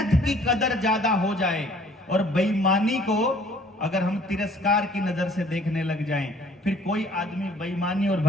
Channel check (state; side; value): normal; both; correlation 0.57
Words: की कदर ज्यादा हो जाए और बेईमानी को अगर हम तिरस्कार की नजर से देखने लग जाएं, फिर कोई आदमी बेईमानी और